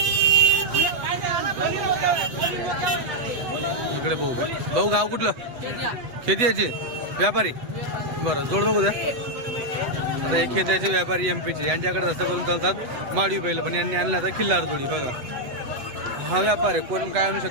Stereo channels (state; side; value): late; left; 8.1 ms